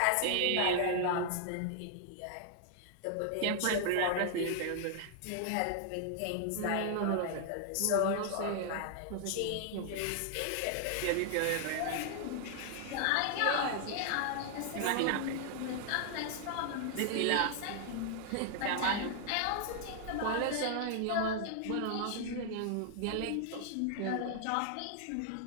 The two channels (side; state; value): both; different; correlation 0.00